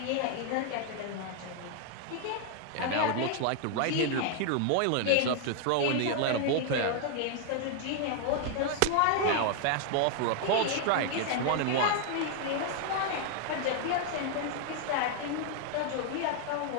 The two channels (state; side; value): different; both; correlation 0.00